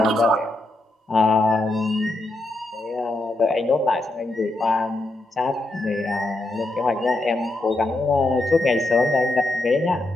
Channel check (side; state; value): both; normal; correlation 0.84